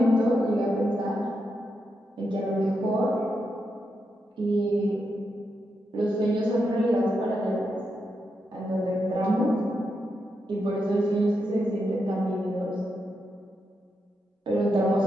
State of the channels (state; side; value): normal; both; correlation 0.84